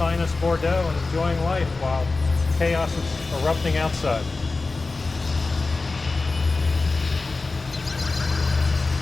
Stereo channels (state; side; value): quieter; right; 3.7 dB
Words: Bordeaux and enjoying life while chaos is erupting outside.